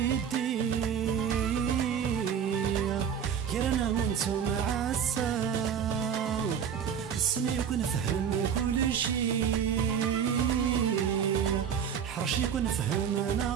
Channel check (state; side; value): quieter; left; 7.9 dB